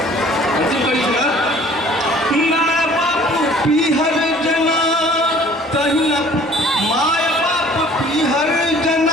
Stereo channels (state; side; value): normal; both; correlation 0.52